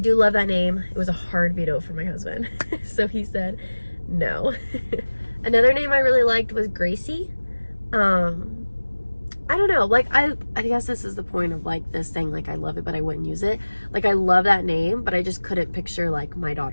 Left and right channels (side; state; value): both; inverted; correlation -1.00